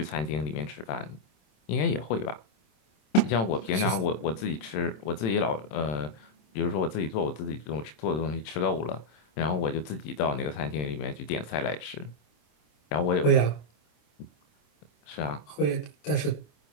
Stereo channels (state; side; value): late; right; 27 ms